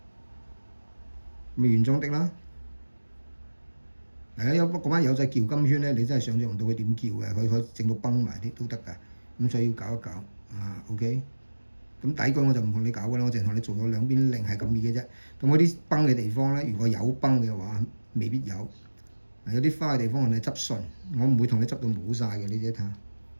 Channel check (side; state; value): both; inverted; correlation -1.00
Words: 咪原裝的啦。有嗰班友仔撬金圈咧，你真係想像唔到佢點撬嘅，佢可以整到崩埋啲都得㗎。咁所以要搞一搞啊 ，OK。咁底句我就唔同你搞㗎啦，我淨係同你做咗兩邊零係咁易嘅啫。咁嗰啲崩嘅地方咧，如果有崩嘅話，未必有。有啲花嘅地方我哋執順，我唔會同你執到冇晒嘅，你自己睇下。